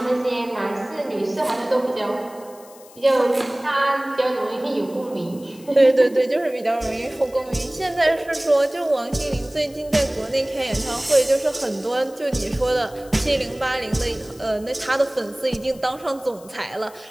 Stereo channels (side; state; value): left; noise; hiss, 23 dB below the sound